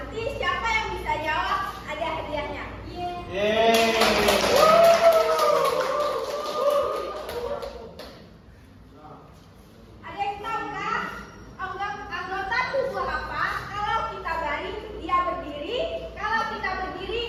siapa yang bisa jawab ada hadiahnya. Yeay. Ada yang tahu nggak anggota tubuh apa? Kalau kita baring, dia berdiri. Kalau kita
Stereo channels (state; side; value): identical; both; correlation 1.00